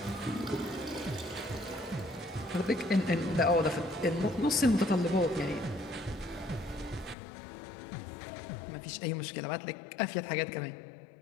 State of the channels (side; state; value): right; drops out; at 7.2 s